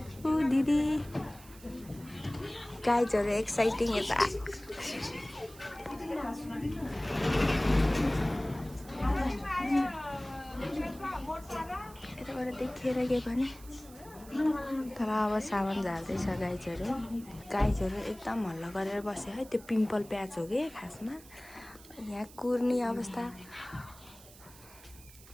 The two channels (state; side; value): noise; right; hiss, 21 dB below the sound